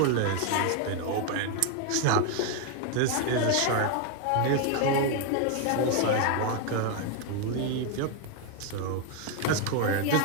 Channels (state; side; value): different; both; correlation 0.01